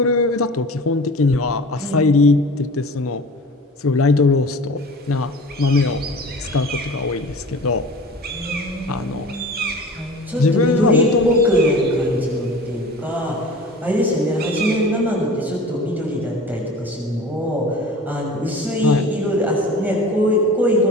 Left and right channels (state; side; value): normal; both; correlation 0.39